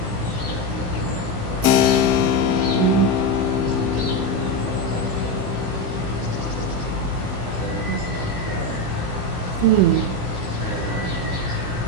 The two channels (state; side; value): late; left; 17 ms